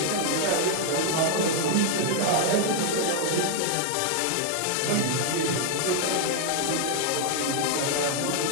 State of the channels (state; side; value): different; both; correlation 0.00